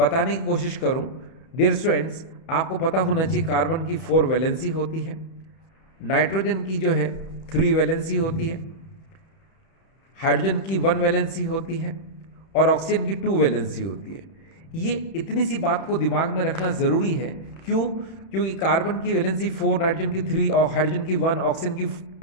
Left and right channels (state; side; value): late; right; 31 ms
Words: की कोशिश करूँ। डियर स्टूडेंट्स, आपको पता होना चाहिए कार्बन की 4 वैलेंसी होती है, नाइट्रोजन की जो है 3 वैलेंसी होती है, हाइड्रोजन की 1 वैलेंसी होती है, और ऑक्सीजन की 2 वैलेंसी होती है। ये इतनी सी बात को दिमाग में रखना ज़रूरी है। क्यों? क्योंकि कार्बन की वैलेंसी 4, नाइट्रोजन की 3 और हाइड्रोजन की 1, ऑक्सीजन की